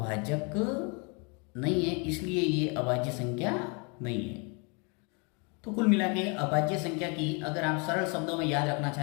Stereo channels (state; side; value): quieter; right; 33.2 dB